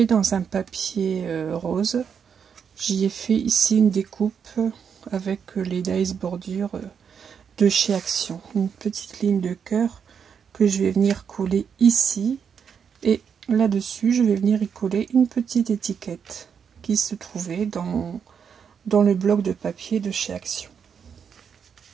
dans un papier rose. J'y ai fait ici une découpe avec les dies bordures de chez Action. Une petite ligne de cœur que je vais venir coller ici. Et là-dessus, je vais venir y coller une petite étiquette qui se trouvait dans le bloc de papier de chez Action.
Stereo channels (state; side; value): quieter; left; 7.1 dB